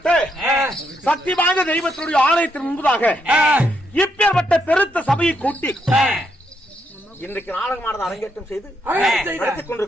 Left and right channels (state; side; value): normal; both; correlation 0.78